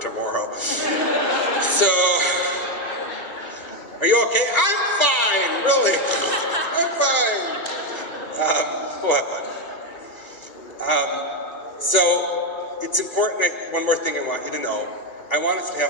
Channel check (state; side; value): late; right; 2.4 ms